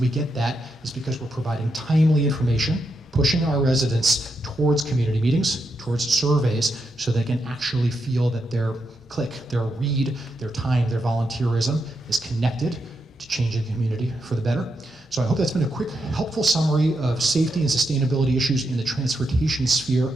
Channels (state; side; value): normal; both; correlation 0.83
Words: get that is because we're providing timely information, pushing our residents towards community meetings, towards surveys, so they can actually feel that their click, their read, their time, their volunteerism is connected to changing the community for the better. So I hope that's been a quick, helpful summary of safety and sustainability issues in the transportation sphere,